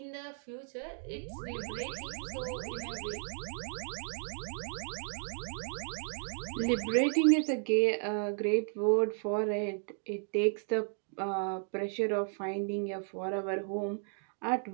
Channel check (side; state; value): left; silent; 55 dB below the other